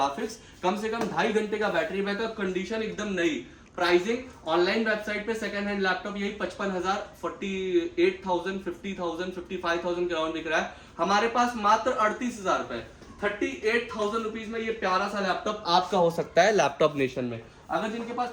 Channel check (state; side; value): identical; both; correlation 1.00